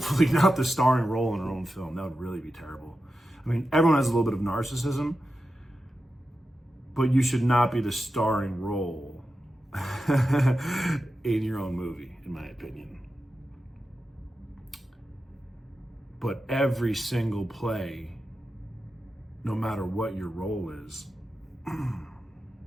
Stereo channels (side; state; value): both; normal; correlation 0.91